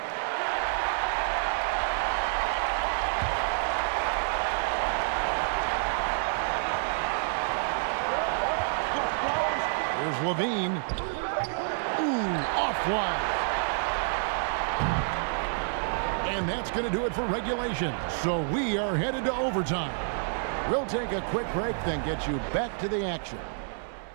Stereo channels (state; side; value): silent; left; 59 dB below the other